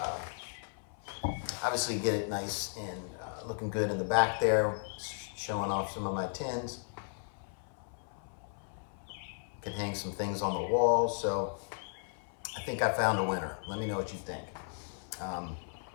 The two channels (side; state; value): right; silent; 54 dB below the other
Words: obviously get it nice and looking good in the back there, showing off some of my tins. Could hang some things on the wall. So I think I found a winner. Let me know what you think.